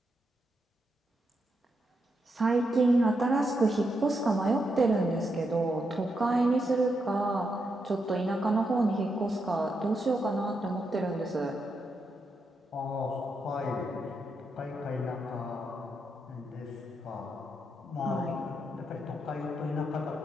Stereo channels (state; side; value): normal; both; correlation 0.83